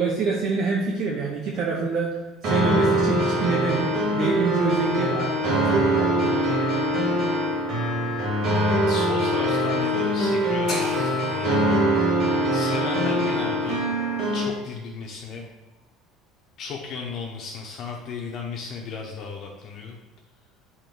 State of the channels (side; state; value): both; normal; correlation 0.48